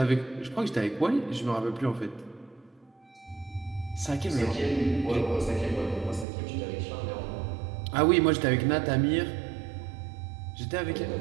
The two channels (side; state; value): left; drops out; at 6.2 s